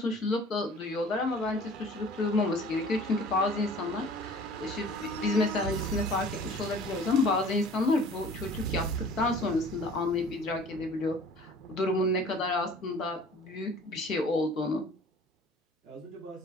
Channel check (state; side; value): normal; both; correlation 0.48